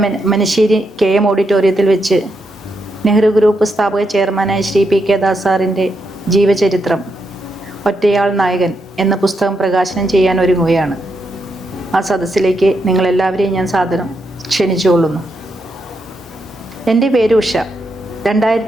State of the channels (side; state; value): both; normal; correlation 0.81